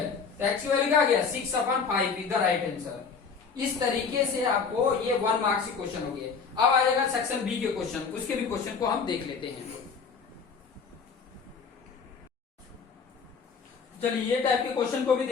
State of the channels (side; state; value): right; quieter; 5.5 dB